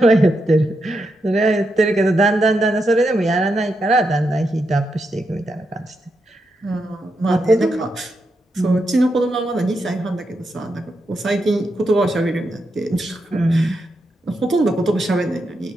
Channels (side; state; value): both; normal; correlation 0.84